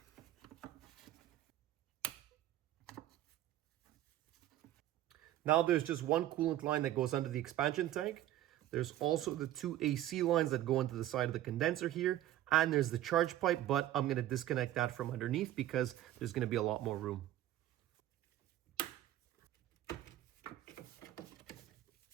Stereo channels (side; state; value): left; quieter; 13.5 dB